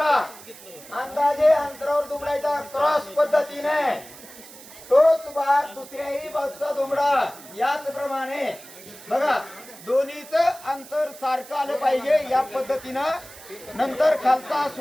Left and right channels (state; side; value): noise; right; hiss, 18 dB below the sound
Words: अंदाजे अंतरावर दुमडायचा क्रॉस पद्धतीने तोच भाग दुसऱ्याही बाजूचा दुमडा याच प्रमाणे बघा दोन्हीच अंतर सारखं आलं पाहिजे या पद्धतीनं नंतर खालचा